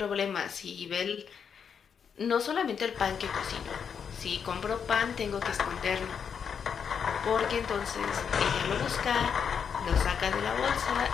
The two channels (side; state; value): right; quieter; 7.0 dB